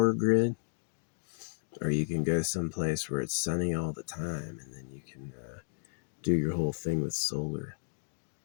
grid, or you can go someplace where it's sunny all the time, and then you can do your whole thing with solar.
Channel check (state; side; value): silent; right; digital silence